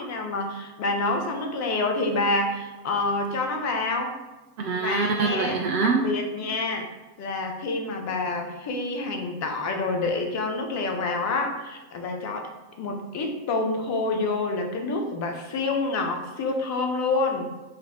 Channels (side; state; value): left; late; 7.8 ms